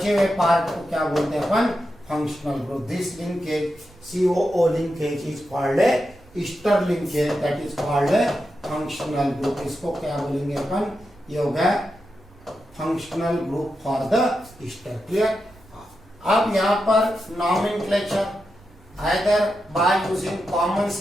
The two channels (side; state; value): right; noise; rumble, 25 dB below the sound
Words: हुए पार्ट को क्या बोलते हैं अपन? Functional group. This linkage COO linkage is called a ester linkage, that is called a functional group. इसको क्या बोलेंगे अपन? ये हो गया functional group for the ester. Clear? अब यहाँ पर nomenclature either by using common